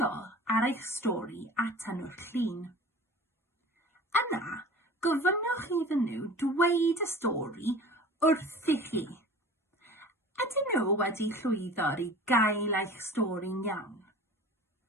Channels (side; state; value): both; normal; correlation 0.41